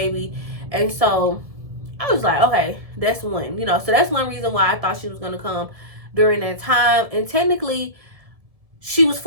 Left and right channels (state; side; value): late; left; 1.7 ms